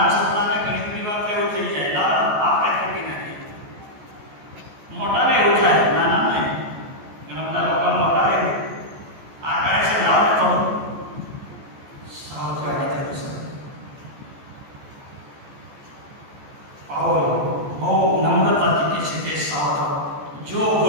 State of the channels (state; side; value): late; left; 14 ms